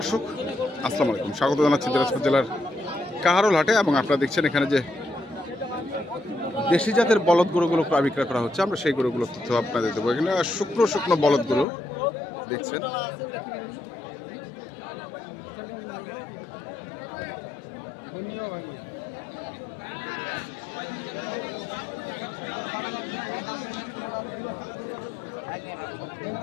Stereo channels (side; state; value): right; drops out; at 11.7 s